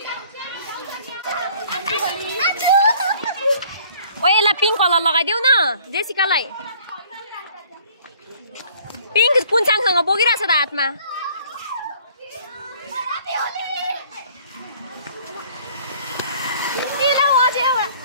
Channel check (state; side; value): inverted; both; correlation -0.56